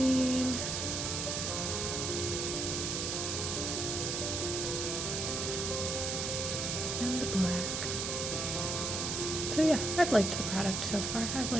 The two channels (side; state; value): right; noise; hiss, 1 dB below the sound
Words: And the black. So yeah, I've liked the product so far. I've